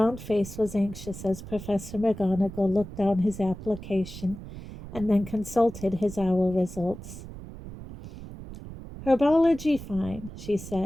face was anxious as Professor McGonagall looked down his application and then consulted his OWL results. "Herbology fine," she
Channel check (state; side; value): noise; right; rumble, 13 dB below the sound